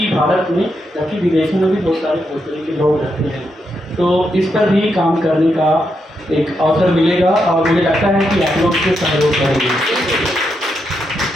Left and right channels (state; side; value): normal; both; correlation 0.82